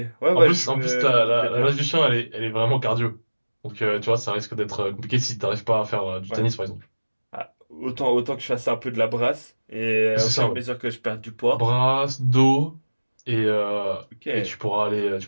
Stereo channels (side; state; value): both; inverted; correlation -1.00